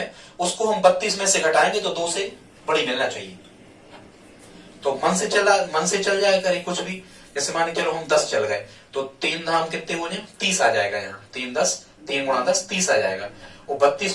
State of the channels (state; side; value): identical; both; correlation 1.00